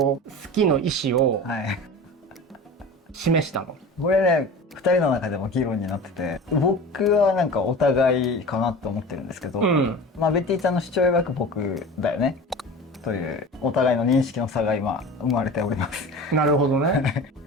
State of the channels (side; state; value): both; normal; correlation 0.35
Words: きの意思を示したの？これね、2人の中でも議論になってて、僕はなんかお互いかなって思ってるんですけど、まあベティちゃんの主張曰く僕だよねというお互いの認識の差が今生まれております。なるほどね。